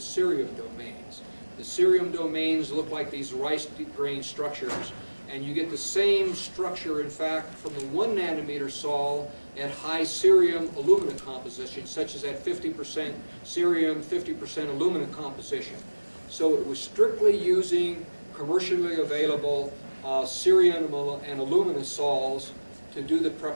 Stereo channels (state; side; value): inverted; both; correlation -1.00